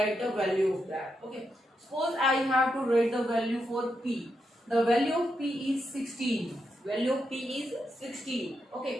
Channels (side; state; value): both; normal; correlation 0.84